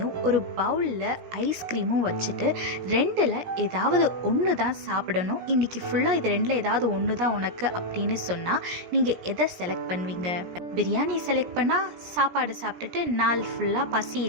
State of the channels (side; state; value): left; late; 17 ms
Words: ஒரு பவுலில் ஐஸ்கிரீமும் வச்சுட்டு ரெண்டில் ஏதாவது ஒன்று தான் சாப்பிடணும், இன்றைக்கி ஃபுல்லாக இது ரெண்டில் ஏதாவது ஒன்று தான் உனக்கு அப்படின்னு சொன்னால் நீங்கள் எதை செலக்ட் பண்ணுவீங்க? பிரியாணி செலக்ட் பண்ணால் சாப்பாடு சாப்பிட்டுட்டு நாள் ஃபுல்லாக பசி